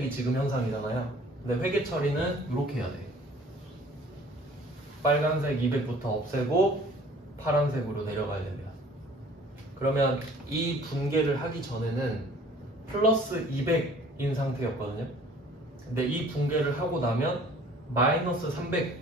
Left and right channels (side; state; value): both; normal; correlation 0.52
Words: 지금 현상이잖아요. 근데 회계 처리는 이렇게 해야 돼. 빨간색 200부터 없애고 파란색으로 내려가야 됩니다. 그러면 이 분계를 하기 전에는 플러스 200인 상태였거든요. 근데 이 분계를 하고 나면 마이너스